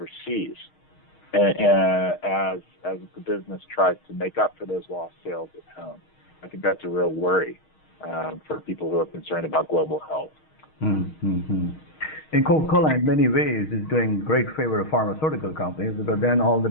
as the business tries to make up for those lost sales at home. I think that's a real worry for people who are concerned about global health. Mm-hmm. And Coca-Cola, in many ways, is doing great favor of pharmaceutical companies, because then all the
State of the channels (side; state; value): right; late; 6.4 ms